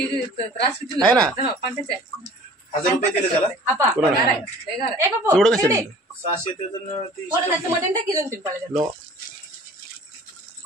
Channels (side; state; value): both; normal; correlation 0.48